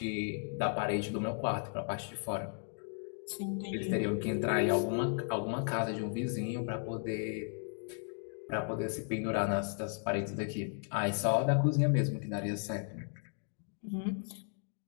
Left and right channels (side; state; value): right; silent; 54 dB below the other